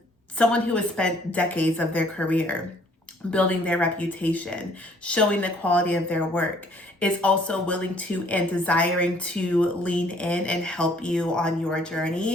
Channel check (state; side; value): normal; both; correlation 0.60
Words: someone who has spent decades of their career building their reputation, showing the quality of their work, is also willing to and desiring to lean in and help you on your